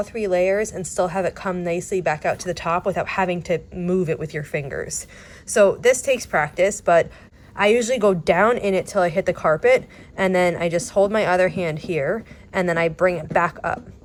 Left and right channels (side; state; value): both; identical; correlation 1.00